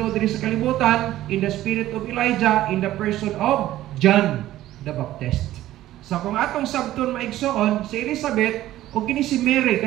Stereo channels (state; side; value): quieter; left; 14.4 dB